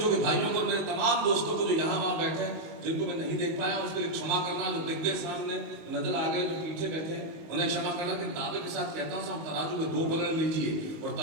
के भाइयों को, मेरे तमाम दोस्तों को जो यहाँ वहां बैठे हैं, जिनको मैं नहीं देख पाया उसके लिए क्षमा करना। जो दिख गए सामने नजर आ गए, जो पीछे बैठे हैं उन्हें क्षमा करना। कि दावे के साथ कहता हूं साहब, तराजू के 2 पलड़े लीजिए और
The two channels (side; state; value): left; late; 19 ms